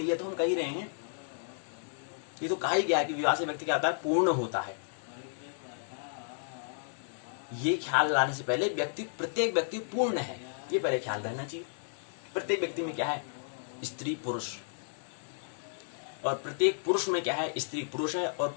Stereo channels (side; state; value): right; silent; digital silence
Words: ही है। तो हम कह ही रहे हैं, ये तो कहा ही गया है कि विवाह से व्यक्ति क्या होता है? पूर्ण होता है। ये ख्याल लाने से पहले व्यक्ति, प्रत्येक व्यक्ति पूर्ण है, ये पहले ख्याल रहना चाहिए। प्रत्येक व्यक्ति में क्या है? स्त्री पुरुष। और प्रत्येक पुरुष में क्या है? स्त्री पुरुष है। और